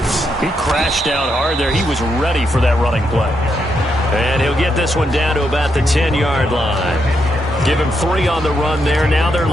He crashed down hard there. He was ready for that running play. And he'll get this one down to about the 10-yard line. Give him 3 on the run there. Now they're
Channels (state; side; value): normal; both; correlation 0.80